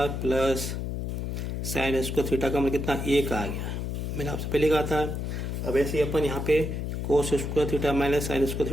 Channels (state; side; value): noise; left; hum, 3 dB below the sound